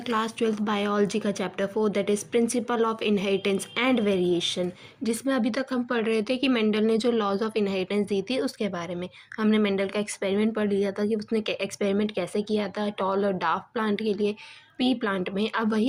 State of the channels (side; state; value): both; identical; correlation 1.00